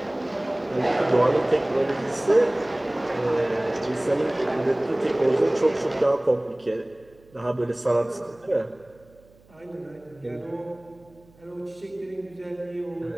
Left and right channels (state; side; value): noise; right; hum, 29 dB below the sound